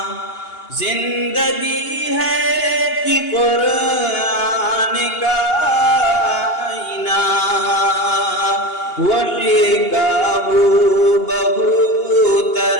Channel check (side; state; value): right; late; 2.8 ms